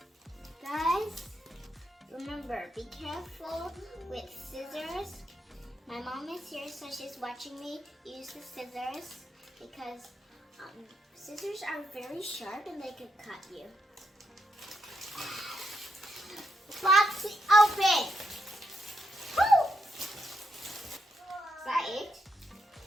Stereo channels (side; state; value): both; normal; correlation 0.81